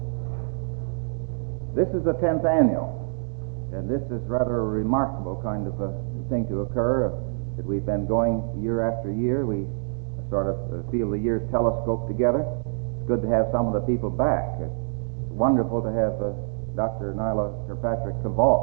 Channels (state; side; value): silent; left; digital silence